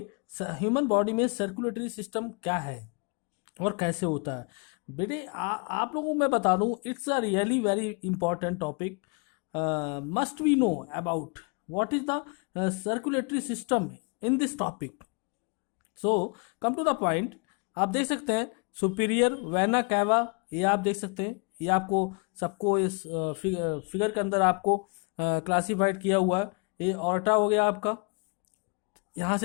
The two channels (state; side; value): quieter; right; 34.2 dB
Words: ह्यूमन बॉडी में सर्कुलेटरी सिस्टम क्या है और कैसे होता है। बेटे आप लोगों को मैं बता दूं, it's a really very important topic. Must we know about what is the circulatory system in this topic. So come to the point. आप देख सकते हैं सुपीरियर वेना कैवा, ये आप देख सकते हैं। ये आपको सबको इस फिगर के अंदर आपको क्लासिफाइड किया हुआ है। ये ऑर्टा हो गया आपका। यहाँ